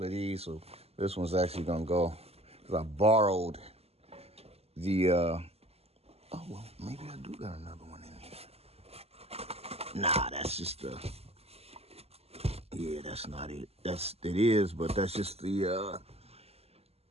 of these. So this one's actually going to go, because I borrowed the, oh, well, maybe I do got another one in here. Nah, that's just the... Yeah, that's not it. It is, but that's just the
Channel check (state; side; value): late; left; 0.29 ms